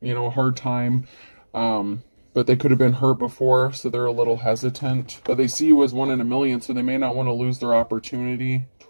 you know, a hard time. But they could have been hurt before, so they're a little hesitant. But they see you as 1 in a million, so they may not want to lose their opportunity,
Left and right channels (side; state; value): both; inverted; correlation -1.00